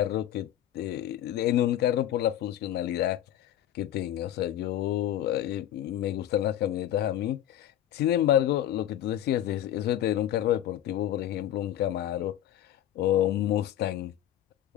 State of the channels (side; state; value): right; quieter; 12.0 dB